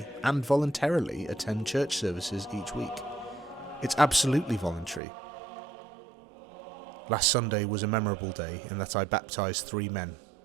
and voluntarily attend church services each week. It's absolutely voluntary. Last Sunday was a memorable day in that I baptised 3 men,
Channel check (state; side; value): drops out; left; at 5.0 s